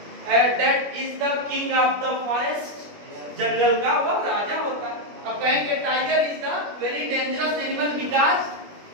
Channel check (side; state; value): left; late; 21 ms